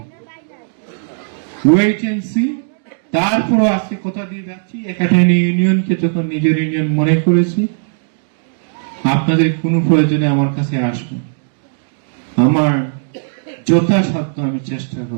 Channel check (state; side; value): silent; left; digital silence